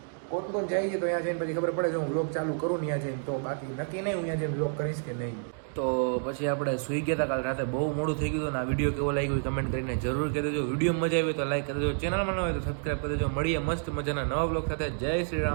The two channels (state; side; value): silent; left; digital silence